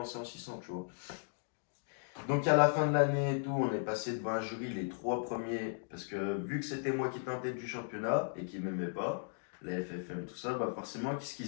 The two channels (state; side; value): silent; right; digital silence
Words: en 600, tu vois. Donc à la fin de l'année et tout, on est passé devant un jury, les trois premiers, parce que vu que c'était moi qui étais en tête du championnat et qui m'aimait pas, la FFM, tout ça, bah forcément, qu'est-ce